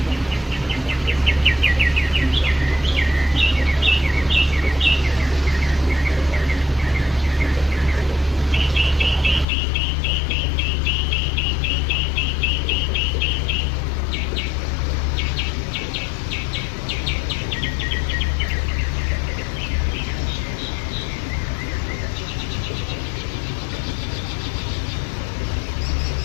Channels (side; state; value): right; drops out; at 9.5 s